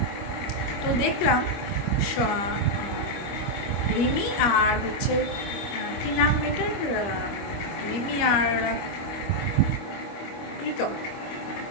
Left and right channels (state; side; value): late; right; 25 ms